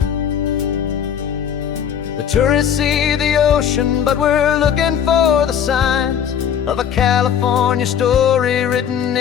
The tourists see the ocean, but we're looking for the signs of a California story written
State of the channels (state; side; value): quieter; right; 8.6 dB